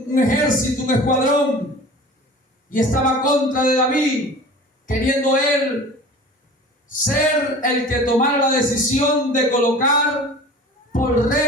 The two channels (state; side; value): normal; both; correlation 0.40